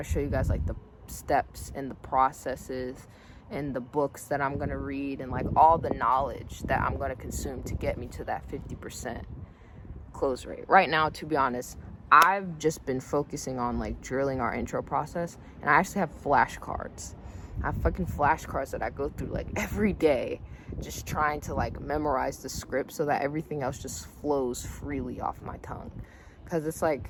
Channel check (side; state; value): both; identical; correlation 1.00